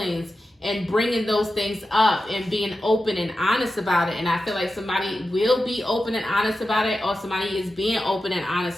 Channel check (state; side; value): normal; both; correlation 0.92